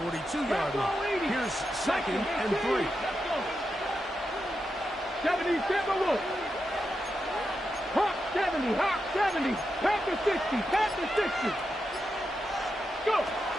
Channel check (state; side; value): normal; both; correlation 0.87